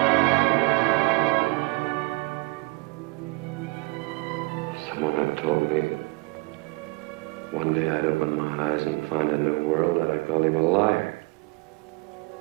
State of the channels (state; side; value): quieter; left; 27.0 dB